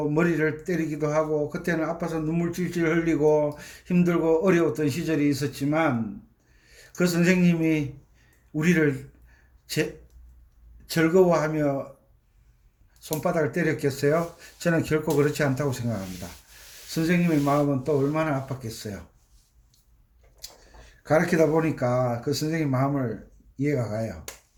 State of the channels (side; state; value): both; identical; correlation 1.00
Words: 머리를 때리기도 하고 그때는 아파서 눈물 찔찔 흘리고 힘들고 어려웠던 시절이 있었지만 그 선생님이 우리를 즐거워하며 손바닥을 때렸겠어요? 저는 결코 그렇지 않다고 생각합니다. 선생님의 마음은 또 얼마나 아팠겠어요. 가르치다 보니까 그 선생님 마음을 이해가 가요.